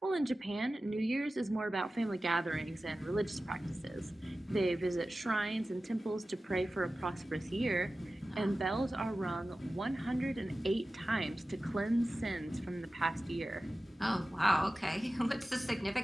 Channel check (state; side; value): normal; both; correlation 0.95